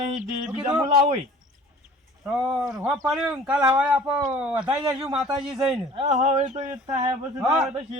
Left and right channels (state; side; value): normal; both; correlation 0.48